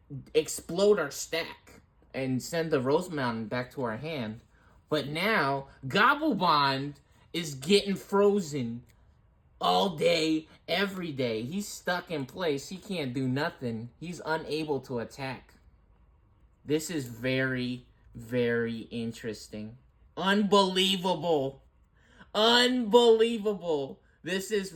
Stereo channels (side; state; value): both; identical; correlation 1.00